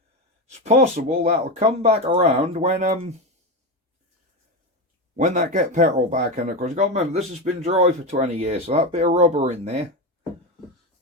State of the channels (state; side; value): normal; both; correlation 0.16